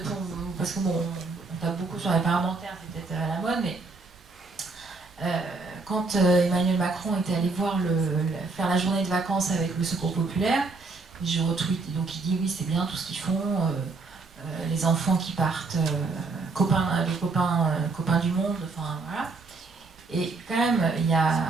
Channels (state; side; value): quieter; left; 3.9 dB